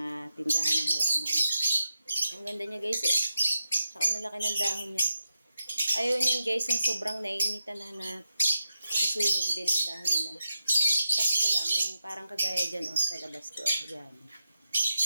tindahan ng halaman. Ang ganda niya guys, oh. Saka nalaki ng dahon niya. Ayaw niyan guys, ang sobrang naiinitan na susunog din ang dahon nila. Sakto lang, yung parang kagaya dyan, oh, sa labas ko, oh, yan.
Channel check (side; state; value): both; inverted; correlation -0.89